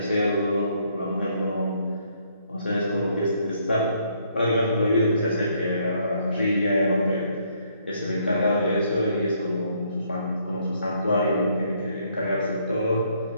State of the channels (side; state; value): both; inverted; correlation -0.69